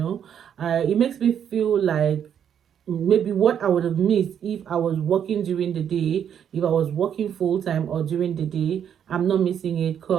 makes me feel like maybe what I would have missed if I was working during the day, if I was working full time or during the day, I'm not missing it,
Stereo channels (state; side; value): quieter; left; 8.8 dB